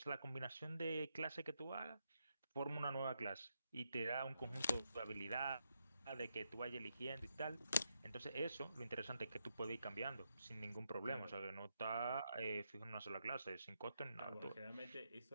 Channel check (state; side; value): inverted; both; correlation -0.83